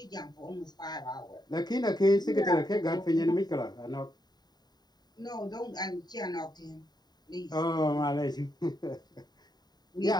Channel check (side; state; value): right; late; 0.20 ms